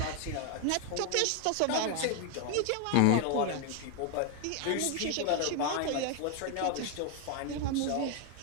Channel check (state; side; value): different; both; correlation 0.01